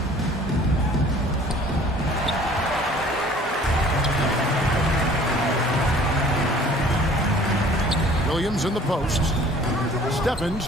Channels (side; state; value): both; normal; correlation 0.51